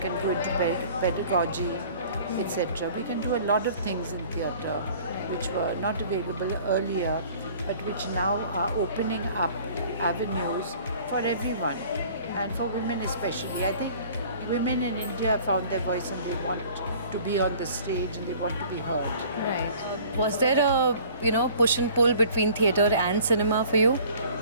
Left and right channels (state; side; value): inverted; both; correlation -0.50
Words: go into pedagogy, etc. We can do a lot of things in theatre which were not available earlier, but which now are opening up avenues for everyone, and for women especially. I think women in India have found their voice and they want to be on the stage and they want to be heard. Right. Was there a push and pull between theatre and cinema for you?